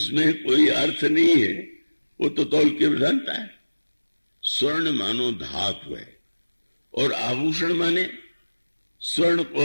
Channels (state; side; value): inverted; both; correlation -1.00